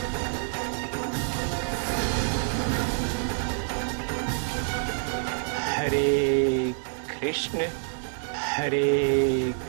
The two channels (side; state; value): left; silent; 56 dB below the other